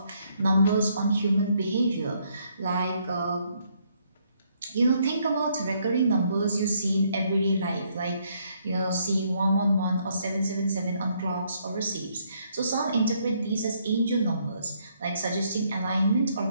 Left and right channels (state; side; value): inverted; both; correlation -0.71